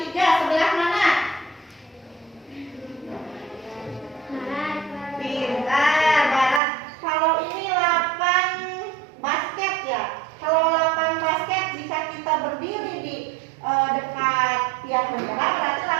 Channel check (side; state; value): left; drops out; at 6.6 s